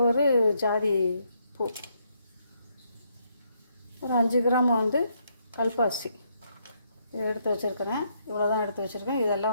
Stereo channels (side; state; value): both; inverted; correlation -0.74